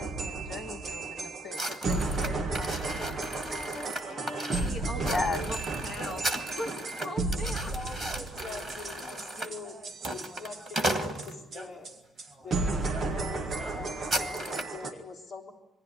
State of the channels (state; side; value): normal; both; correlation 0.68